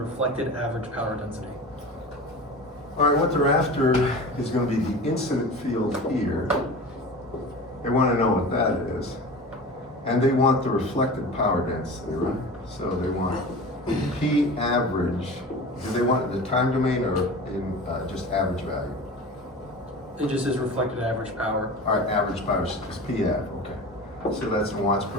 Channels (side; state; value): both; normal; correlation 0.34